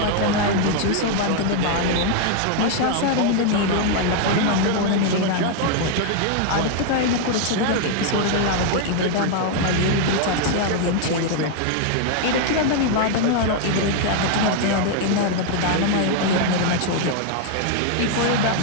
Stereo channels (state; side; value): different; both; correlation 0.00